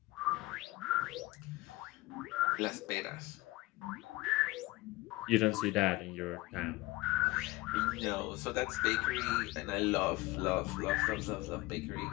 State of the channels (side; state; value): right; quieter; 20.5 dB